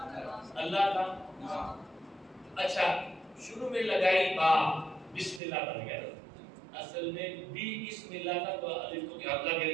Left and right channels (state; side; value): drops out; left; at 5.4 s